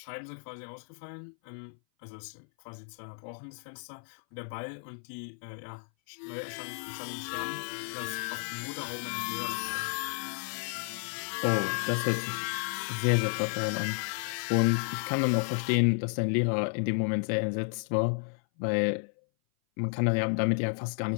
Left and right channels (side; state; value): right; silent; 56 dB below the other